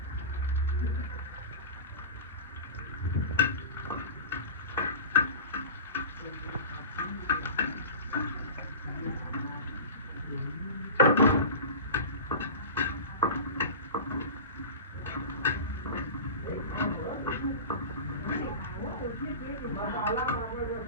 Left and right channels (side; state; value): both; inverted; correlation -0.31